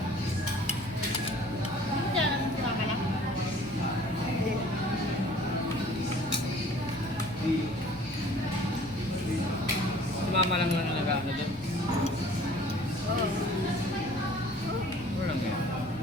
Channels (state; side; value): normal; both; correlation 0.51